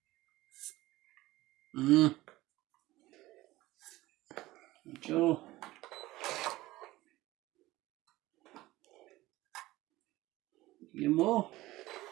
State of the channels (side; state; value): left; quieter; 17.9 dB